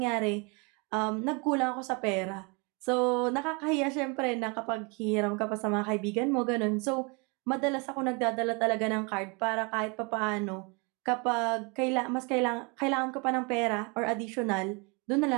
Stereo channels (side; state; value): left; quieter; 31.0 dB